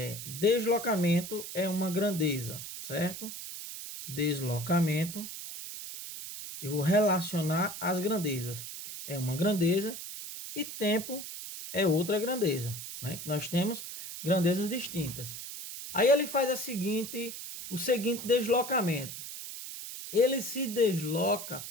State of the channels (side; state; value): right; noise; hiss, 9 dB below the sound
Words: Deslocamento é uma grandeza, certo? Deslocamento, eu vou relacionar as grandezas. É uma grandeza e tempo é outra grandeza, né? Que nós temos grandezas distintas. Aí ele faz o seguinte deslocamento. Ele se desloca